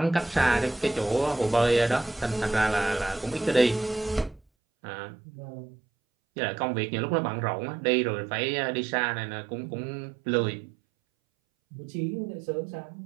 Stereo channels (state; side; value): drops out; left; at 4.4 s